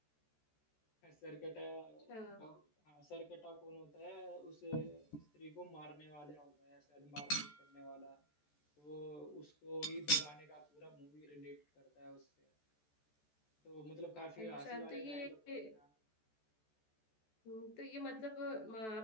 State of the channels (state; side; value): late; right; 14 ms